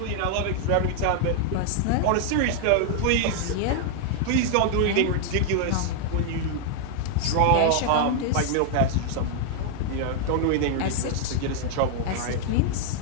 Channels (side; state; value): both; different; correlation 0.00